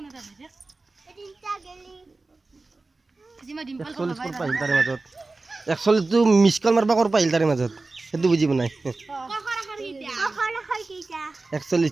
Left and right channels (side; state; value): left; quieter; 3.4 dB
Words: তাৰে মাজত 41 টো মিছ কল মাৰবা কৰ পাইল তাৰে মাজত সেইটো বুজি নাই